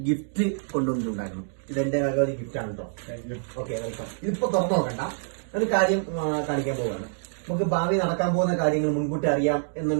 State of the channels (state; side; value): silent; left; digital silence